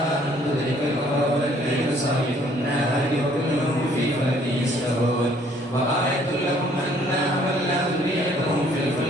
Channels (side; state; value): both; normal; correlation 0.61